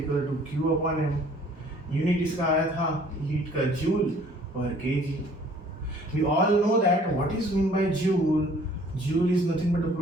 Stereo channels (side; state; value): both; normal; correlation 0.55